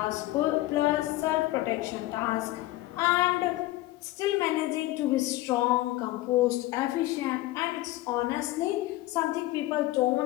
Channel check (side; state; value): right; quieter; 17.4 dB